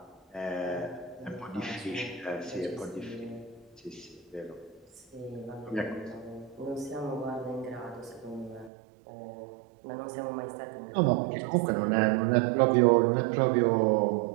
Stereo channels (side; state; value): left; drops out; at 8.7 s